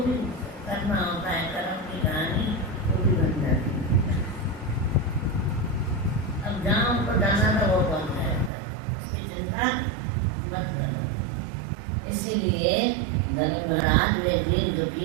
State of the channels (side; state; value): left; drops out; at 8.5 s